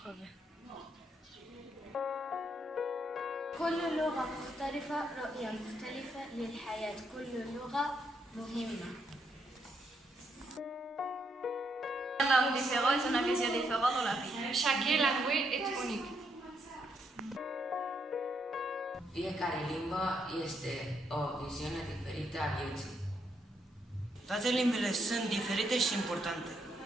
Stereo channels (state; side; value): normal; both; correlation 0.77